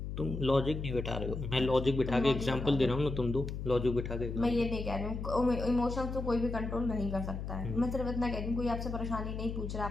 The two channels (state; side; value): noise; left; hum, 5 dB below the sound